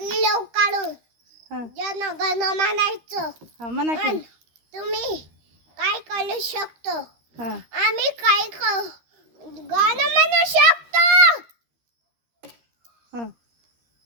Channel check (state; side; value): late; left; 13 ms